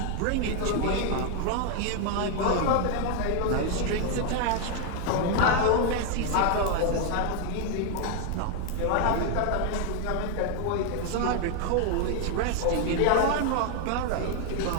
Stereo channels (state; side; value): different; both; correlation 0.00